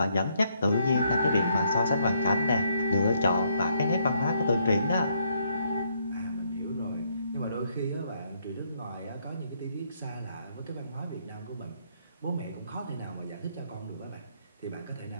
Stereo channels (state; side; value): inverted; both; correlation -0.73